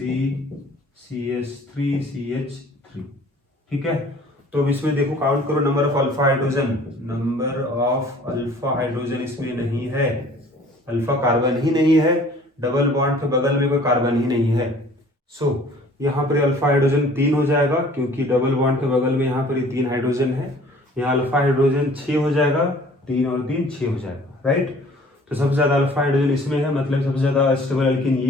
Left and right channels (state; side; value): normal; both; correlation 0.52